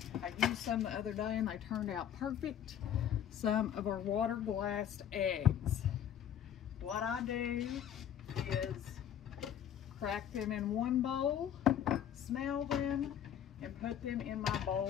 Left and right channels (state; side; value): quieter; right; 9.7 dB